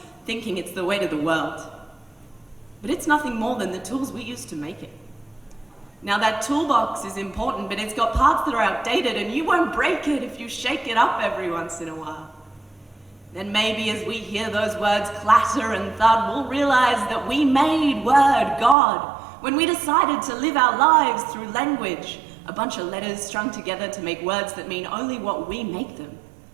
thinking it's the weight of the world. But it's nothing more than the tools we use to make it. Now that toolbox is important, but it's got parts that are outdated, and you won't break it if you shake it up every once in a while. Then maybe as we hear those words clatter and thud, we'll realize that we made word God when we decided to live our lives through language, a bunch of letters strung together to make words that mean only what we make them.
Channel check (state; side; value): drops out; left; at 18.8 s